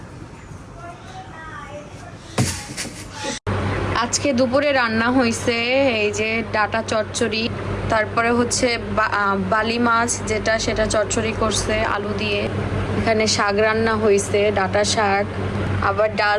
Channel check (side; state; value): both; identical; correlation 1.00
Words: আজকে দুপুরে রান্না হয়েছে এই যে ডাটা চচ্চড়ি, তারপরে হচ্ছে বালি মাছ যেটা সেটা চচ্চড়ি করছে আলু দিয়ে। এখানে শাক রান্না হয়েছে, ডাঁটা শাক, আবার